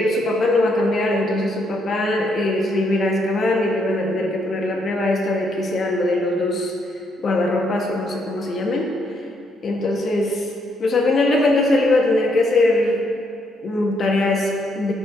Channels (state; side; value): normal; both; correlation 0.74